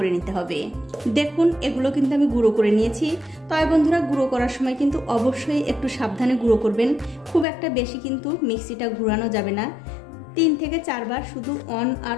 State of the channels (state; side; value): drops out; right; at 7.5 s